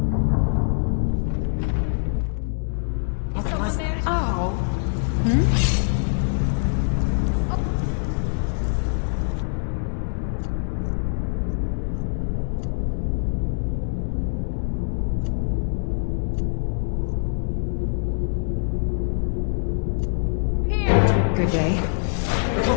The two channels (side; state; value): right; silent; digital silence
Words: Oh. Hmm? Good day.